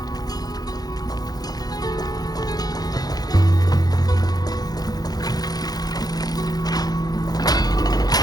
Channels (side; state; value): right; late; 0.19 ms